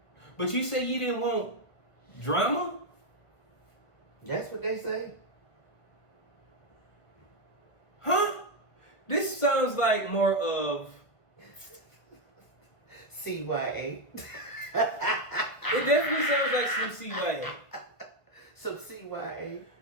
But you say you didn't want drama? That's what they say. Huh? This sounds like more of CYA. It definitely sounds like some CYA. Some CYA.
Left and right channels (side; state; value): right; late; 1.5 ms